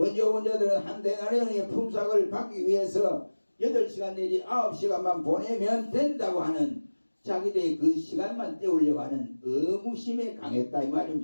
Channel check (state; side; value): inverted; both; correlation -1.00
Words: 온 자들은 한 데나리온의 품삯을 받기 위해서 8시간 내지 9시간만 보내면 된다고 하는 자기들의 그 시간만 때우려고 하는 의무심에 강했다 이